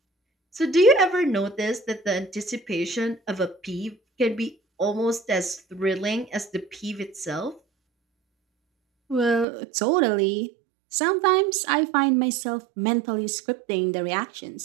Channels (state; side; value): drops out; left; at 9.5 s